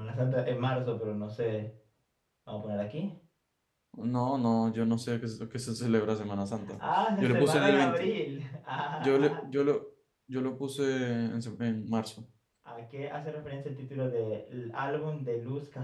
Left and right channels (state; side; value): identical; both; correlation 1.00